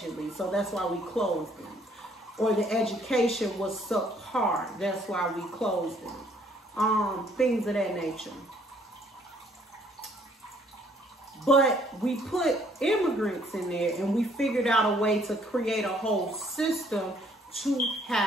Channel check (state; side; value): normal; both; correlation 0.64